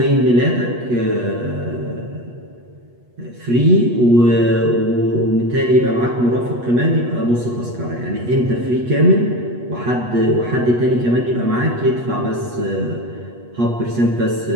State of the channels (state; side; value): late; left; 8.3 ms